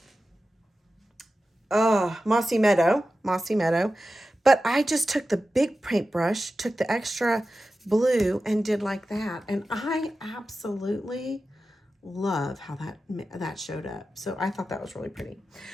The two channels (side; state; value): both; normal; correlation 0.93